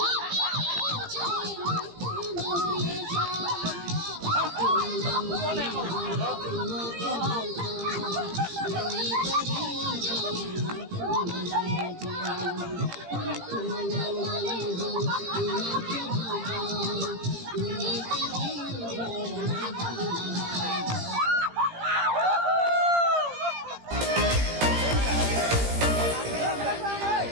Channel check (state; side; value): late; left; 17 ms